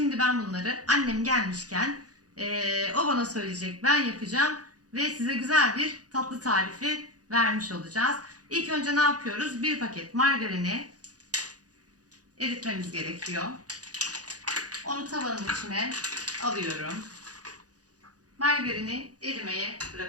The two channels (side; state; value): left; late; 0.67 ms